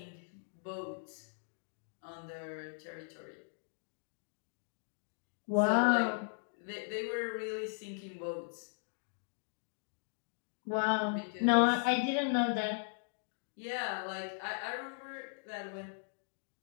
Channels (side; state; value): right; silent; digital silence